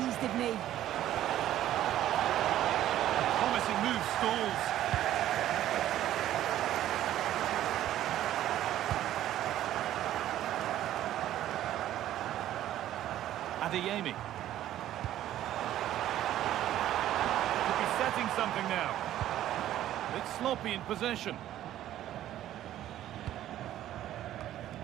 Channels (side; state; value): left; quieter; 12.7 dB